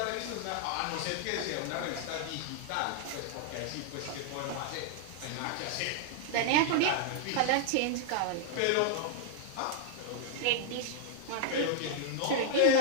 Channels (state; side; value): different; both; correlation -0.01